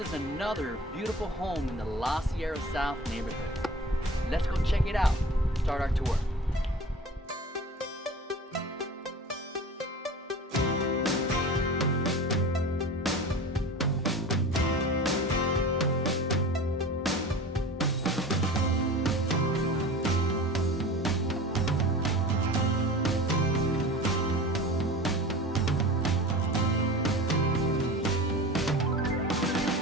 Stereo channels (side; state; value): both; normal; correlation 0.36